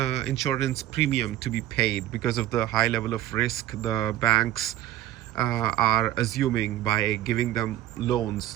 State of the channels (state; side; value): quieter; left; 13.7 dB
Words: premium to be paid because of the high level of risk the banks are assuming by giving them